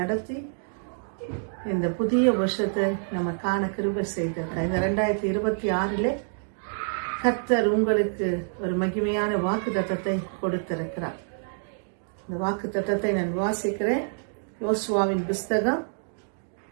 நடத்தி இந்த புதிய வருஷத்தை நம்ம காண கிருபை செய்திருக்கார். இந்த 2026 கர்த்தர் உங்களுக்கு ஒரு மகிமையான வாக்குத்தத்தத்தை கொடுத்திருக்கிறார். இந்த வாக்குத்தத்தத்தை நான் வாசிக்கிறேன். யோசுவாவின் புஸ்தகம்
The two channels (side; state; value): left; silent; digital silence